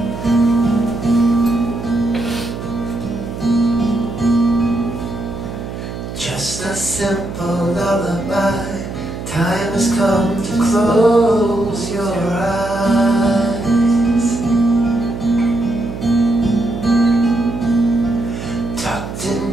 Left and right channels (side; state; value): right; noise; hum, 8 dB below the sound